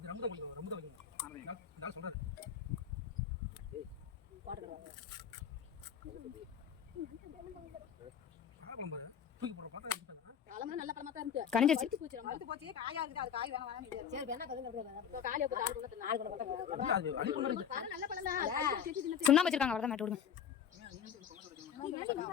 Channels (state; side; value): quieter; right; 8.2 dB